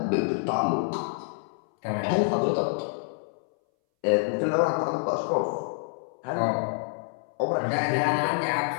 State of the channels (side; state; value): right; silent; 60 dB below the other